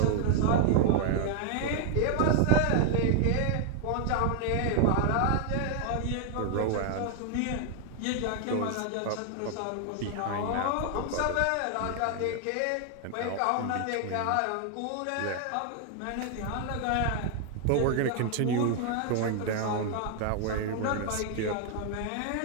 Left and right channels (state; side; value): different; both; correlation 0.00